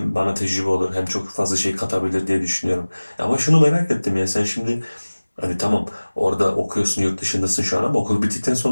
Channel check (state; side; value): inverted; both; correlation -1.00